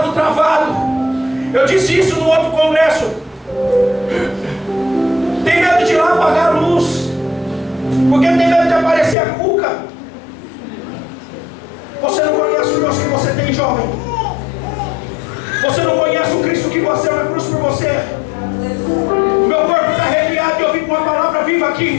travado. Eu disse isso no outro congresso. Tem medo de ir lá apagar a luz, porque tem medo de aparecer a cuca. Você não conhece o Deus que você tem, jovem. Você não conhece o Cristo que você é na cruz por você. Meu corpo está arrepiado e eu vim com uma palavra viva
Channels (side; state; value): right; drops out; at 9.2 s